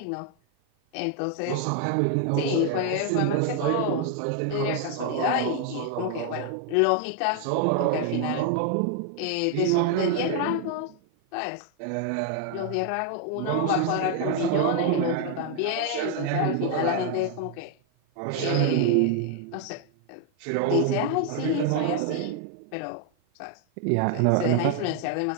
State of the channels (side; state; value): both; different; correlation 0.00